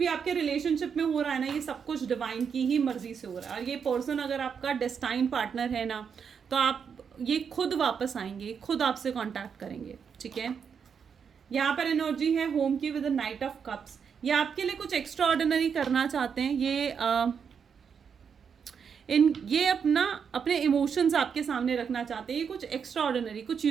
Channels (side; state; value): left; quieter; 6.7 dB